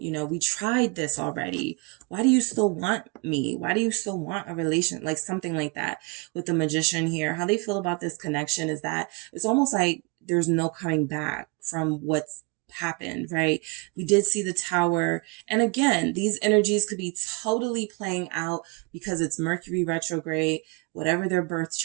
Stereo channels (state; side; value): quieter; left; 29.4 dB